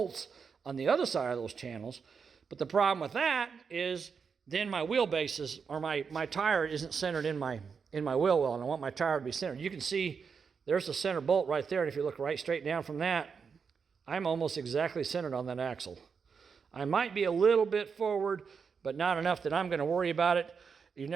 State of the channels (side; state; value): left; quieter; 5.9 dB